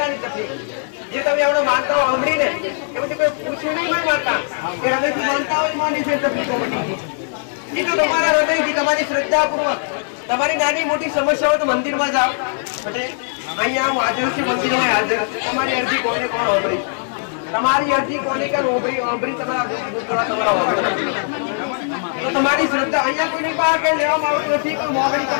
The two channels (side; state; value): right; silent; 58 dB below the other